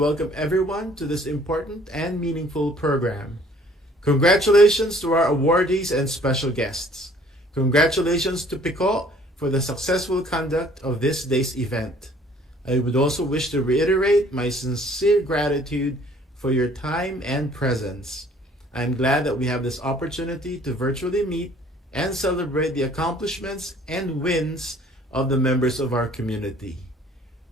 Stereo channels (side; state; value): both; normal; correlation 0.56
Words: everyone to this important and meaningful program. Congratulations to our awardees and special guests. Congratulations to PICO for the successful conduct of this day's event. I would also wish to reiterate my sincere gratitude for your time and presence. I am glad that we have this opportunity to virtually meet and celebrate the accomplishments and wins of the members of our community.